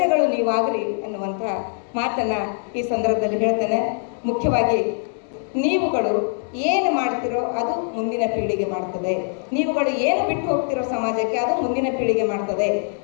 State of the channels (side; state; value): right; silent; 60 dB below the other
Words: ನೀವಾಗಲಿ ಅನ್ನುವಂಥ ಮಾತನ್ನು ಈ ಸಂದರ್ಭದಲ್ಲಿ ಹೇಳ್ತೇನೆ. ಮುಖ್ಯವಾಗಿ ನೀವುಗಳು ಏನು ಮಾಡ್ತಿರೋ ಅದು ಮುಂದಿನ ಪೀಳಿಗೆ ಮಾಡ್ತದೆ. ನೀವುಗಳು ಏನು ಬಿಟ್ಟು ಹೋಗ್ತಿರೋ ಸಮಾಜಕ್ಕೆ ಅದು ಮುಂದಿನ ಪೀಳಿಗೆ ಮಾಡ್ತದೆ.